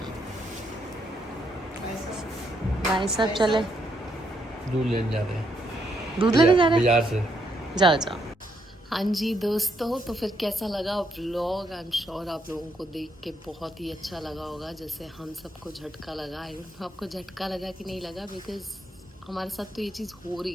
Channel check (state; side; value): normal; both; correlation 0.76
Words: ऐसा. भाई साहब चले दूध लेने जा रहे हैं, दूध लेने जा रहे हैं. बाजार से. जाओ जाओ. हाँ जी दोस्तों, तो फिर कैसा लगा व्लॉग? आई एम श्योर आप लोगों को देख के बहुत ही अच्छा लगा होगा, जैसे हम सबको झटका लगा. आई डोंट नो आपको झटका लगा कि नहीं लगा, बिकॉज हमारे साथ तो ये चीज़ हो